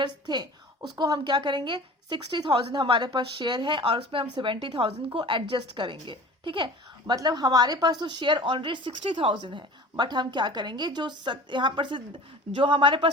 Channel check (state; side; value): normal; both; correlation 0.41